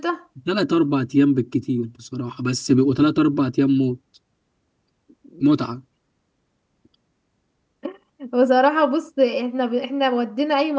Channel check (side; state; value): both; identical; correlation 1.00